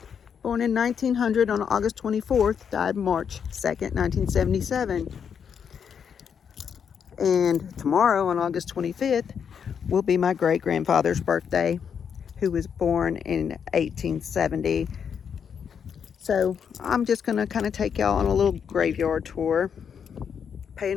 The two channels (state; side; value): quieter; right; 7.3 dB